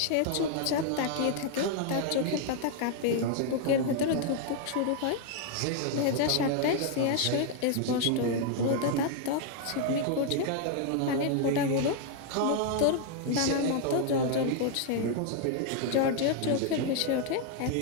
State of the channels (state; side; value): different; both; correlation 0.00